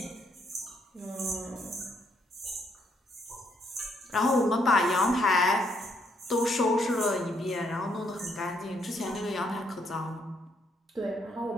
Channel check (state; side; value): normal; both; correlation 0.72